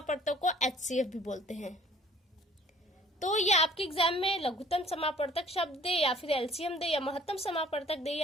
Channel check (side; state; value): both; normal; correlation 0.55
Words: को एचसीएफ भी बोलते हैं। तो ये आपके एग्जाम में लघुत्तम समापवर्तक शब्द दे या फिर एलसीएम दे या महत्तम समापवर्तक दे